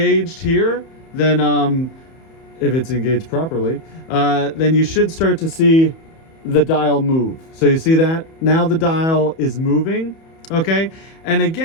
here, then if it's engaged properly, then you should start to see the dial move. So you see that? Now the dial is moving. Okay, and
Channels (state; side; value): late; right; 31 ms